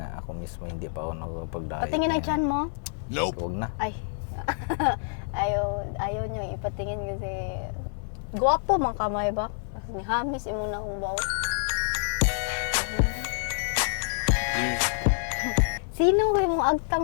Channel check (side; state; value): right; silent; digital silence